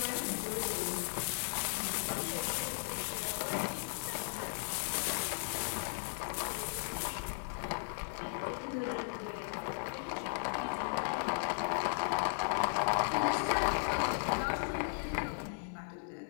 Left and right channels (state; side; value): silent; right; 54 dB below the other